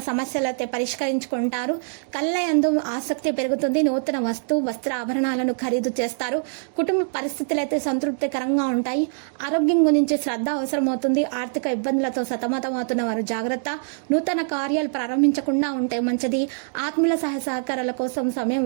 సమస్యలు అయితే పరిష్కరించుకుంటారు. కళ్ళయందు ఆసక్తి పెరుగుతుంది. నూతన వస్త్ర ఆభరణాలను ఖరీదు చేస్తారు. కుటుంబ పరిస్థితులు అయితే సంతృప్తికరంగా ఉంటాయి. ఆరోగ్యం గురించి శ్రద్ధ అవసరమవుతుంది. ఆర్థిక ఇబ్బందులతో సతమతమవుతున్న వారు జాగ్రత్త. నూతన కార్యాలు ప్రారంభించకుండా ఉంటే మంచిది. ఆత్మీయుల సహకారాల కోసం సమయం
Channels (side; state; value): left; silent; digital silence